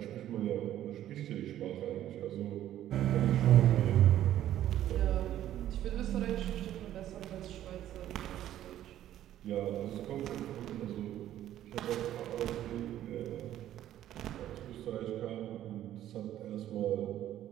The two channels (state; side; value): quieter; left; 12.3 dB